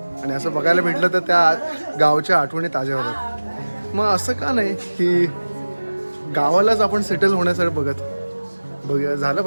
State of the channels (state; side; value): inverted; both; correlation -1.00